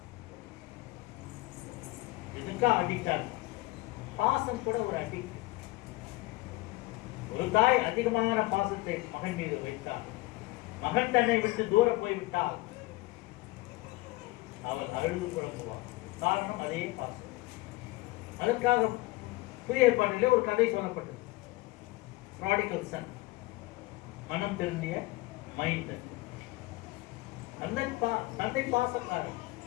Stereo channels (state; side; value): quieter; right; 20.7 dB